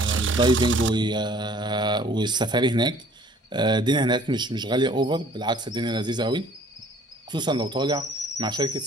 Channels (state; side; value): normal; both; correlation 0.55